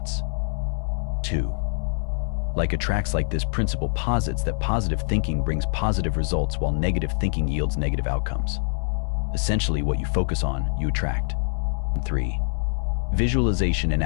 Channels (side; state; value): right; silent; 55 dB below the other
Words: 2. Like attracts, like this principle posits that positive thinking brings positive results while negative thinking yields negative outcomes. Essentially, what you focus on, you attract. 3. Visualization and